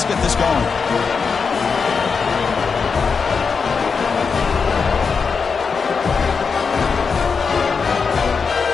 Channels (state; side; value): quieter; right; 5.4 dB